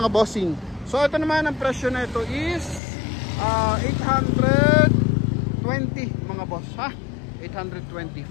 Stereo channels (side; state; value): right; drops out; at 2.8 s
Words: bossing. So ito naman ang presyo na ito is 820,000 mga boss, ha? 820.